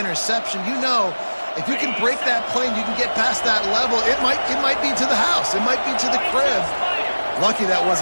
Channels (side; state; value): both; inverted; correlation -1.00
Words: you know, if you can break that play and you can get past that level, it might be to the house. It might be to the crib. Lucky that